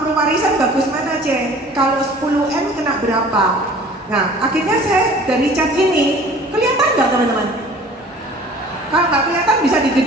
bagus mana C? Kalau 10M kena berapa? Nah, akhirnya saya dari chat ini, kelihatan nggak teman-teman? Kalau nggak kelihatan bisa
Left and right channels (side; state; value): both; normal; correlation 0.48